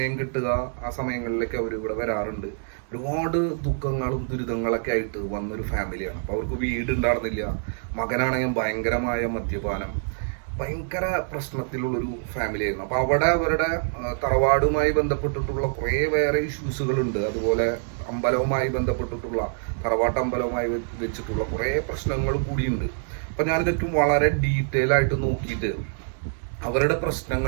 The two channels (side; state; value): left; silent; digital silence